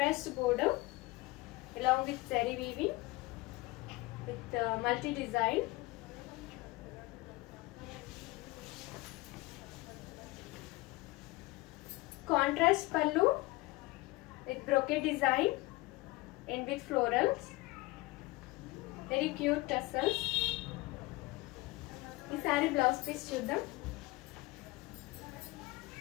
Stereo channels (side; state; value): right; quieter; 21.5 dB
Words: border along with zari weaving with multi design. Contrast pallu with brocade design and with florals. Very cute tassels. Ee saree blouse piece chuddam.